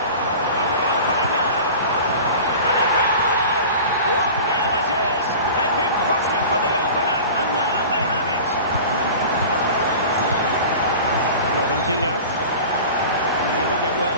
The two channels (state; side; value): inverted; both; correlation -0.37